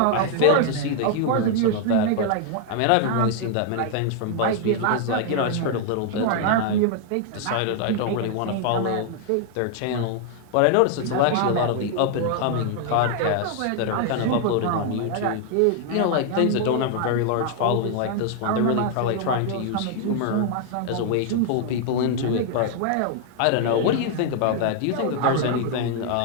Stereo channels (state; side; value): different; both; correlation 0.00